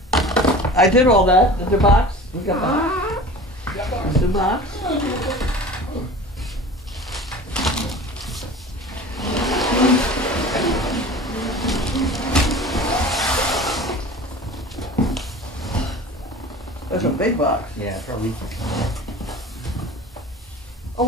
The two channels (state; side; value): normal; both; correlation 0.39